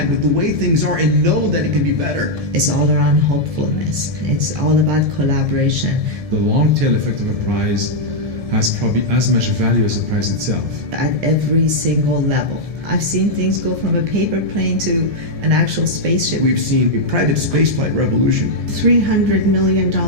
with the way things are and know that it can be better. It's all around hopefulness. It's all about collaboration. The long tail effect of a prize has probably as much value as the prize itself. At every single level. I've seen things go from a paper plane to an actual spaceship. We've seen a private spaceflight revolution. $300 million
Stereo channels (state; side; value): late; left; 1.7 ms